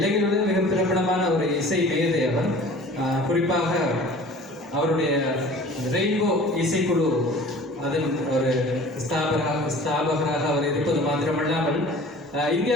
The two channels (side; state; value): both; normal; correlation 0.44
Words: மிக பிரபலமான ஒரு இசை மேதை அவர். குறிப்பாக அவருடைய ரெயின்போ இசைக்குழு அதன் ஒரு ஸ்தாபகராக அவர் இருப்பது மாத்திரமல்லாமல்